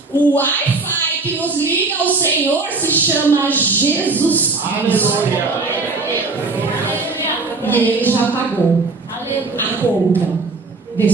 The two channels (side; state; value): left; quieter; 3.8 dB